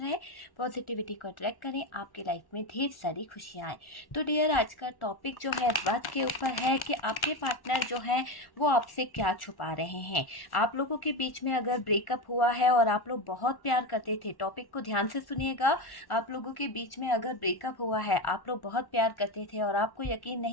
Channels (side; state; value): right; late; 1.1 ms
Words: पॉजिटिविटी को अट्रैक्ट करें, आपके लाइफ में ढेर सारी खुशियाँ आए। तो डियर, आज का टॉपिक जो है इस बात के ऊपर है कि आपके पार्टनर जो है वो आपसे क्या छुपा रहे हैं। आप लोगों के बीच में अगर ब्रेकअप हुआ है और आप लोग बहुत प्यार करते थे, टॉपिक को ध्यान से सुनिएगा। आप लोगों के बीच में अगर ब्रेकअप हुआ है, आप लोग बहुत प्यार करते थे और आपको यकीन